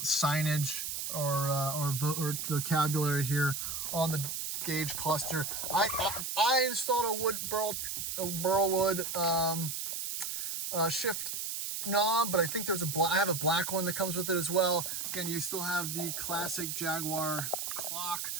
signage or vocabulary here on the gauge cluster. I installed a Burlwood shift knob, but I think there's I have a black one that comes with it as well. Again, you still have the classic Jaguar clock,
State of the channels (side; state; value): right; noise; hiss, 3 dB below the sound